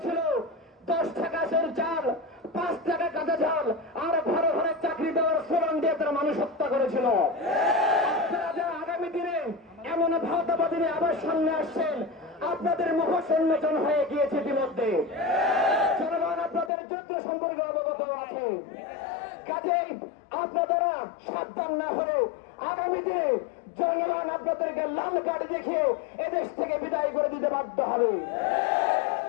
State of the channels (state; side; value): drops out; right; at 16.7 s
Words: 10 টাকা সের চাল, 5 টাকা কাঁচা ঝাল আর ঘরে ঘরে চাকরি দেওয়ার স্লোগান দিয়ে তারা মানুষ হত্যা করেছিল। আপনারা যারা আগামী দিনে এমন ভাওতাবাজি নিয়ে আবার সামনে আসছেন, আপনাদের মুখ উন্মোচন হয়ে গিয়েছে ইতিমধ্যে। জনগণ আপনাদের যুদ্ধ সম্পর্কে অবগত আছে। কাজেই আপনারা সাবধান না হলে আগামী দিনে জনগণ আপনাদেরকে লাল কার্ড দেখিয়ে এদেশ থেকে বিদায় করে দিতে বাধ্য হবে।